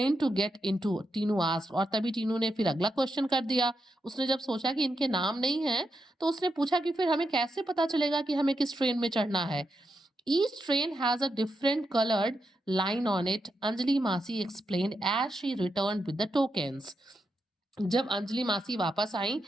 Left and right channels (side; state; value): both; normal; correlation 0.85